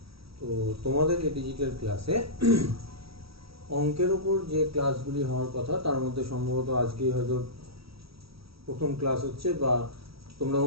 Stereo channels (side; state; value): left; late; 0.76 ms